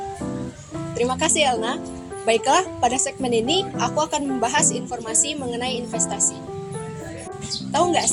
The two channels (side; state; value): both; identical; correlation 1.00